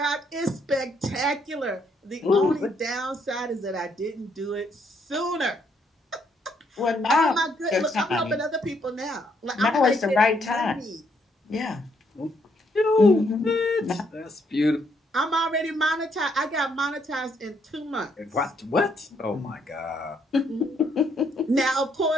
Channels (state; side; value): normal; both; correlation 0.72